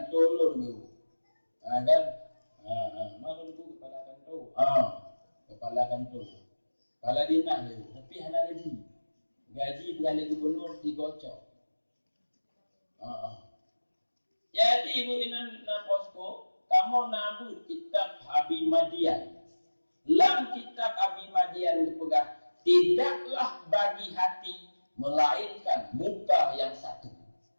lu dulu. Kan? Mana dulu kepala kanto? Kepala kanto. Kepala dinah dulu. Tapi hana gaji. Gaji beralih gubernur 3 ocok. Jadi ibu inan na posko, kamu nabut kitab Abi Madian. Dalam kitab Abi Madian dipegang, tidaklah bagi hati melainkan muka yang satu.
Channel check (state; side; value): inverted; both; correlation -1.00